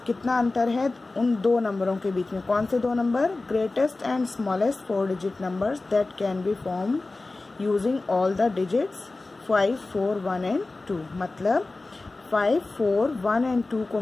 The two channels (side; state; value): right; quieter; 3.3 dB